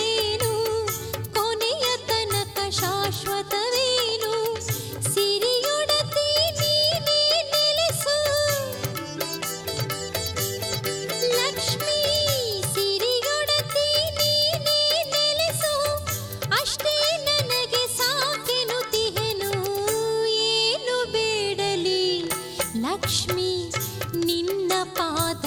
ಕೊನೆಯ ತನಕ ಶಾಶ್ವತವೇನು ಸಿರಿಯೊಡತಿ ನೀನೇ ನೆಲೆಸು ಲಕ್ಷ್ಮೀ ಸಿರಿಯೊಡತಿ ನೀನೇ ನೆಲೆಸು ಅಷ್ಟೇ ನನಗೆ ಸಾಕೆನುತಿಹೆನು ಏನು ಬೇಡಲಿ ಲಕ್ಷ್ಮೀ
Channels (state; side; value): identical; both; correlation 1.00